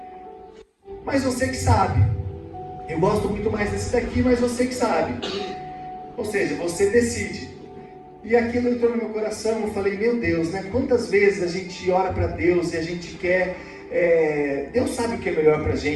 mas você que sabe. Eu gosto muito mais desse daqui, mas você que sabe. Ou seja, você decide. E aquilo entrou no meu coração, eu falei, meu Deus, né? Quantas vezes a gente ora para Deus e a gente quer... Deus sabe o que é melhor pra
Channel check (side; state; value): both; identical; correlation 1.00